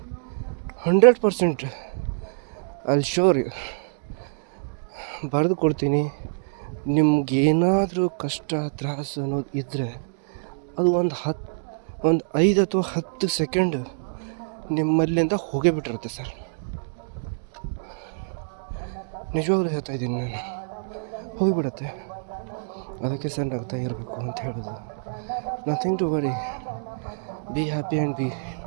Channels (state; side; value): silent; left; digital silence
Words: 100% ಅಲ್ಲಿ ಶೋರ್ ಬರೆದು ಕೊಡ್ತೀನಿ. ನಿಮ್ಗೇನಾದರೂ ಕಷ್ಟ ತ್ರಾಸು ಅನ್ನೋದು ಇದ್ದರೆ ಅದು ಒಂದು 5 ಅಥವಾ 10 ಸೆಕೆಂಡು ನಿಮ್ಮಲ್ಲಿಂದ ಹೋಗೇ ಬಿಟ್ಟಿರುತ್ತೆ ಸರ್. ನಿಜವಾಗ್ಲೂ ಹೇಳ್ತಾ ಇದ್ದೀನಿ, ನಾನು ಹೋಗಿಬಿಡುತ್ತೆ. ಅದಕ್ಕೆ ಸರ್ ನಗ್ತಾ ಇರಬೇಕು ಅಂತ ಹೇಳೋದು. Nothing to worry, be happy and be